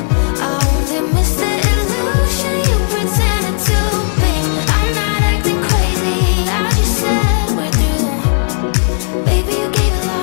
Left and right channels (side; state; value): right; silent; 63 dB below the other